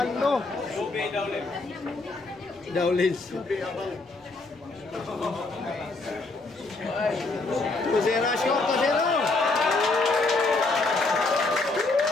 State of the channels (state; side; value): quieter; right; 3.4 dB